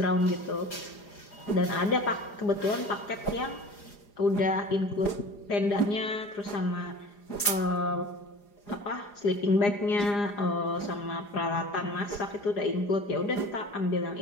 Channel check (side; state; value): right; late; 4.9 ms